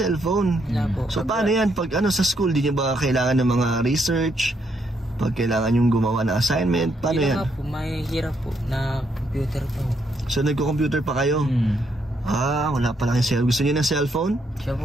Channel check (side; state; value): both; normal; correlation 0.75